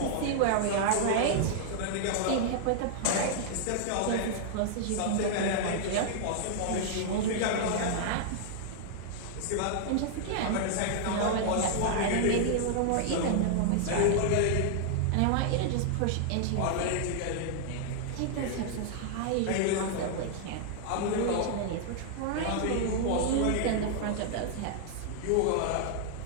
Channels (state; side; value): different; both; correlation -0.01